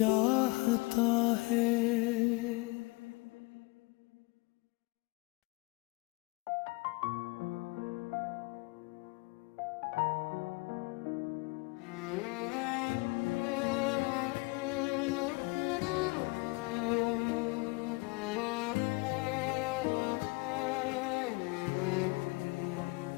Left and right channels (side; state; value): right; quieter; 25.5 dB